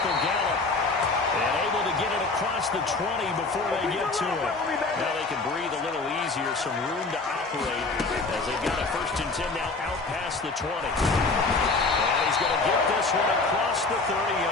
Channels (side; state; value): right; quieter; 3.7 dB